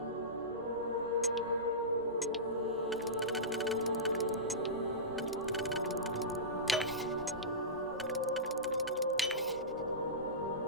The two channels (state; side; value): normal; both; correlation -0.18